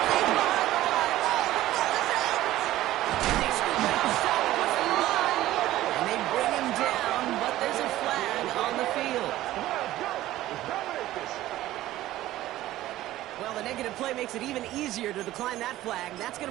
they scoop it outside across the line. And they bring him down, but there's a flag on the field. Well, the negative play makes it even easier to decline that flag. That's going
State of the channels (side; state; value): left; quieter; 15.1 dB